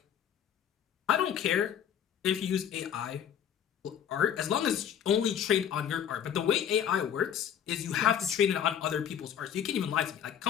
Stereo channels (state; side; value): quieter; right; 9.1 dB